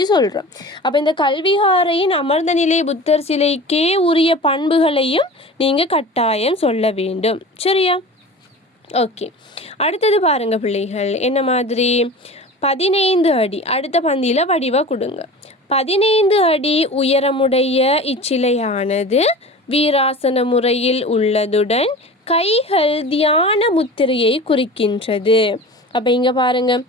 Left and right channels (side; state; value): both; normal; correlation 0.36